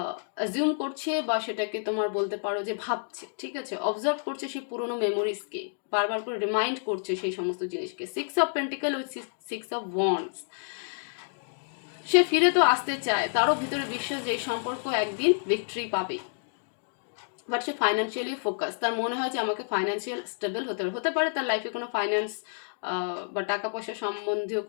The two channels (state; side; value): silent; right; digital silence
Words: অ্যাজিউম করছে, বা সেটাকে তোমার বলতে পারো যে ভাবছে। ঠিক আছে, অবজার্ভ করছে সেই পুরোনো মেমোরিজকে, বারবার করে রিমাইন্ড করছে সেই সমস্ত জিনিসকে। 6 of pentacle with 6 of wands, সে ফিরে তো আসতে চায়, তারও ভিতরে বিশ্বাস যে এই সম্পর্ক একদিন ভিক্টরি পাবে। বাট সে ফাইন্যান্সিয়ালি ফোকাস, তার মনে হয় যে আমাকে ফাইন্যান্সিয়াল স্টেবল হতে পারে তার লাইফে কোনো ফাইন্যান্স বা টাকা পয়সা সম্বন্ধীয়